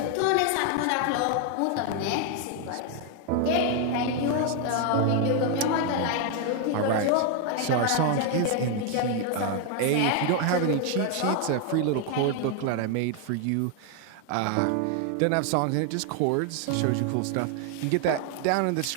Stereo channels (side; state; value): both; different; correlation 0.01